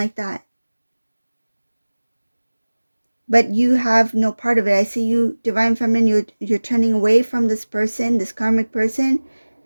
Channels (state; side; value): inverted; both; correlation -1.00